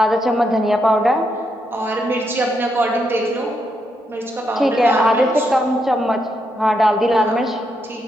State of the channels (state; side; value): normal; both; correlation 0.80